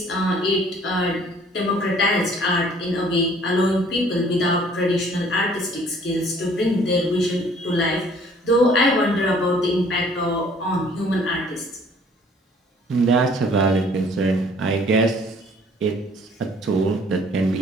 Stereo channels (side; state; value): both; normal; correlation 0.57